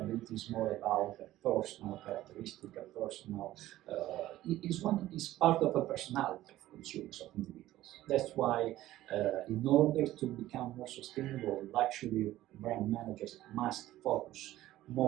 is more about a personal characteristic, a personal, is part of a personality of consumers, of individuals. That's why, in order to become more sustainable, luxury brand managers must focus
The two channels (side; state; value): left; quieter; 15.0 dB